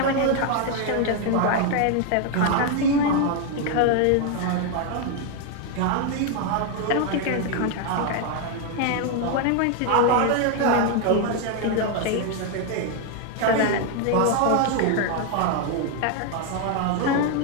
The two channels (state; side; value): different; both; correlation 0.01